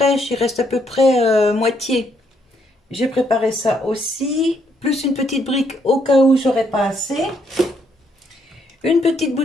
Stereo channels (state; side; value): normal; both; correlation 0.73